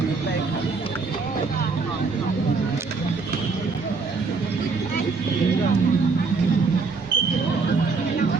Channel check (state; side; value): quieter; left; 4.4 dB